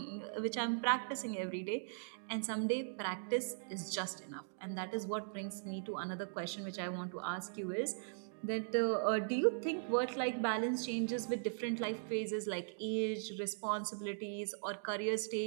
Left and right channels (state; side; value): silent; left; digital silence